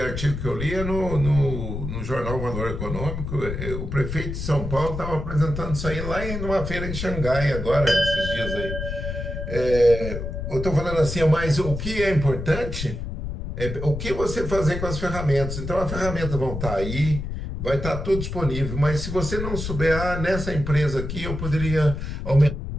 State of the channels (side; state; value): left; noise; rumble, 5 dB below the sound